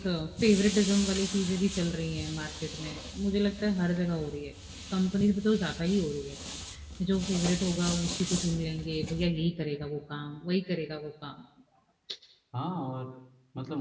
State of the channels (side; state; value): both; identical; correlation 1.00